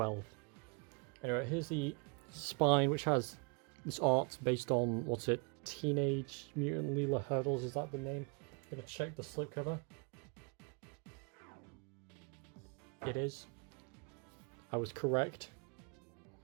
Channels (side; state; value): left; quieter; 33.1 dB